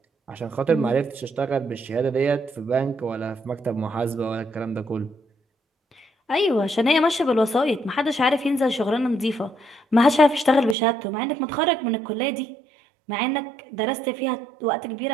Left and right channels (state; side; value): drops out; left; at 10.8 s